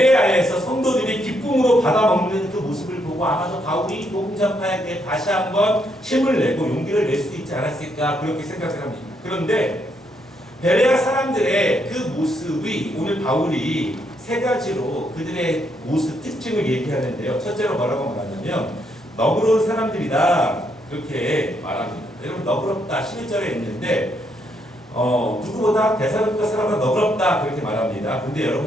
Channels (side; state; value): both; normal; correlation 0.75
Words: 성도들이 기쁨으로 받아먹는 그 모습을 보고 아마도 바울이 복음 전파에 대해 다시 한번 힘을 내고 용기를 낼 수 있지 않았을까 그렇게 생각을 합니다. 그런데 베레아 사람들의 그 모습이 오늘 바울이 3가지로 그들의 모습 특징을 얘기하는데요. 첫째로 뭐라고 말하냐면 너그러운 사람들이다 그렇게 말합니다. 여러분 너그럽다 11절에 있는데 누구보다 데살로니가 사람은 너그럽다 그렇게 말합니다. 근데